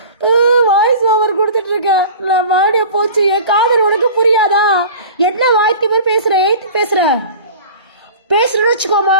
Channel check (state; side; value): inverted; both; correlation -0.39